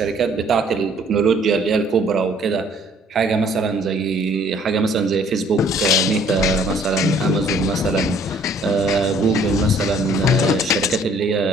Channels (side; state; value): both; normal; correlation 0.58